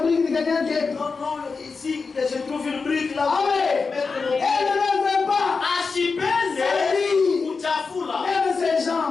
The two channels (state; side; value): quieter; right; 4.7 dB